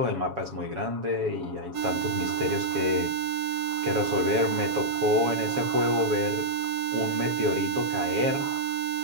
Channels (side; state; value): left; late; 7.2 ms